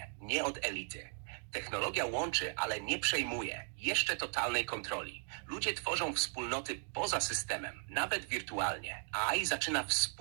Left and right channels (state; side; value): silent; left; 53 dB below the other